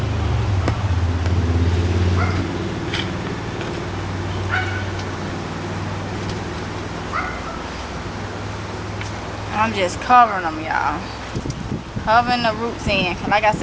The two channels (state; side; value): identical; both; correlation 1.00